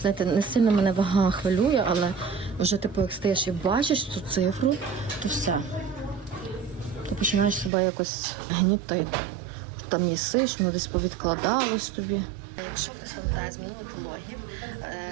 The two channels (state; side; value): drops out; left; at 7.7 s